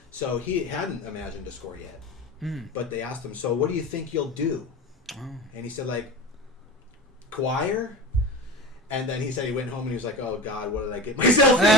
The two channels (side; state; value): both; normal; correlation 0.30